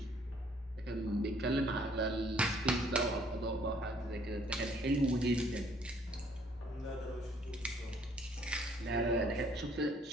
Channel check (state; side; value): normal; both; correlation 0.62